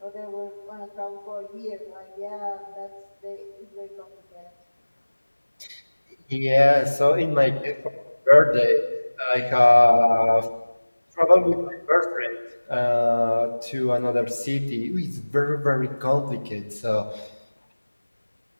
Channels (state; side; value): inverted; both; correlation -1.00